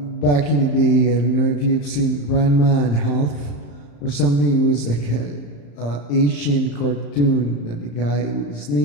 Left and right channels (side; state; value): right; late; 35 ms